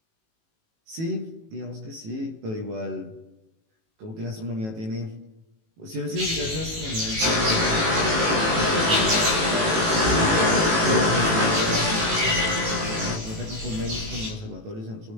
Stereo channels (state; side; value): late; left; 18 ms